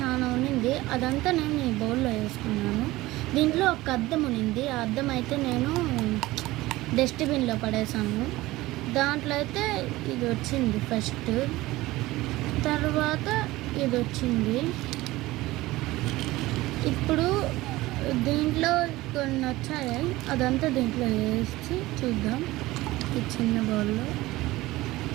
ఉన్నింది, అదంతా నేను ఈ బౌల్లో వేసుకున్నాను. దీంట్లో ఒక అద్దం ఉన్నింది, ఆ అద్దం అయితే నేను డస్ట్బిన్లో పడేసాను. దాంట్లో అయితే ఇది వచ్చింది ఫస్ట్, తర్వాత ఇది వచ్చింది. ఇప్పుడు దీంట్లో కొన్ని వచ్చాయి, అదంతా దీంట్లో వేసి చూద్దాం. ఈ చిన్న బౌల్లో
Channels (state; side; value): quieter; left; 18.5 dB